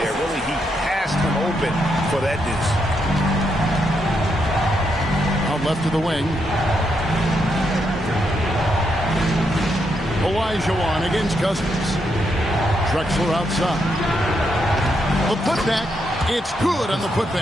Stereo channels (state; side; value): normal; both; correlation 0.80